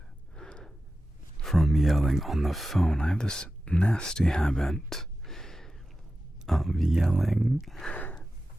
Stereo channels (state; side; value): normal; both; correlation 0.93